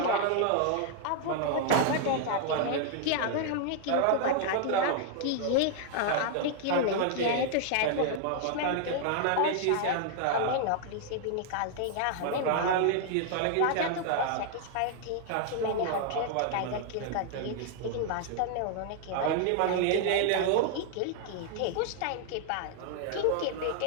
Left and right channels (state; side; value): different; both; correlation 0.00